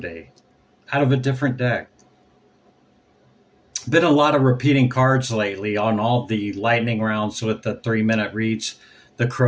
out of a different deck. Been a lot of repeating cards lately on all the lightning rounds with the 3-minute reads. The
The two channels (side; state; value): both; identical; correlation 1.00